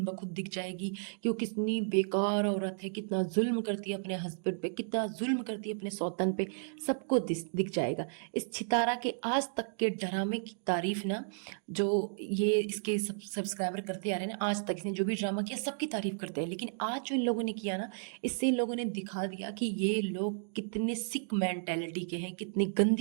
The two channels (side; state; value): left; silent; digital silence